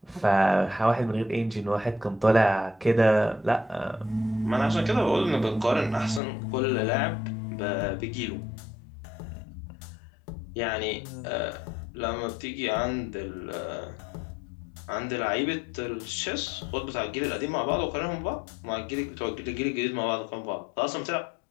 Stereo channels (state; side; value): drops out; right; at 6.2 s